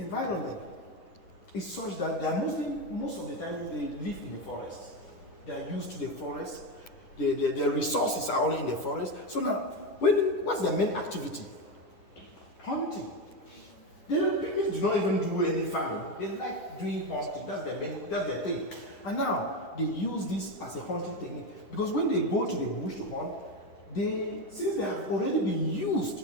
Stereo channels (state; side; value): late; right; 10 ms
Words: is such that they are most of the time they live in the forest. They are used to the forest. Their resources are only in the forest. So now, what's their main activity? Hunting. The pygmies do not even do any farming. They like doing hunting. That's their thing. And now they use this as a hunting technique because when they go to the bush to hunt, since they have already been